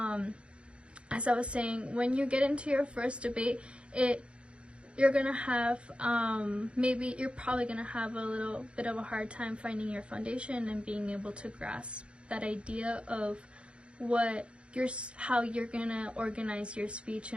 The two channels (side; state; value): left; late; 0.057 ms